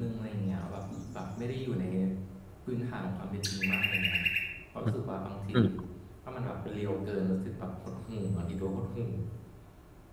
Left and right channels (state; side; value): identical; both; correlation 1.00